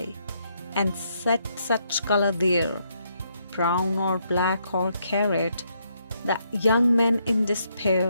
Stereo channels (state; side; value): inverted; both; correlation -0.75